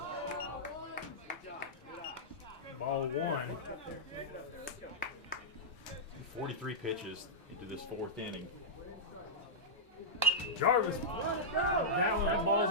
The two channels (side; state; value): both; normal; correlation -0.11